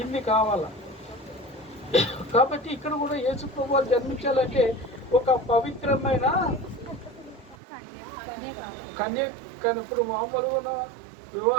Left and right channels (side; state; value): left; drops out; at 7.6 s